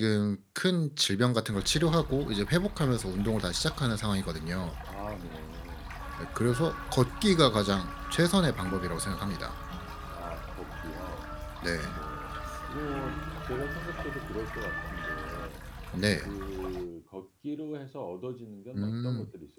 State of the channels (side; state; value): both; identical; correlation 1.00